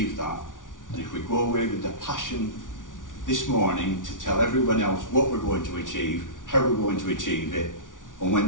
that. And if we go away with the passion this morning to tell everyone else what we're going to achieve, how we're going to achieve it, and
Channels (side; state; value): right; late; 0.88 ms